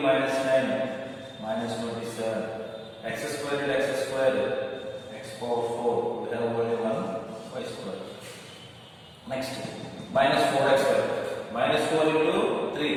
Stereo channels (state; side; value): identical; both; correlation 1.00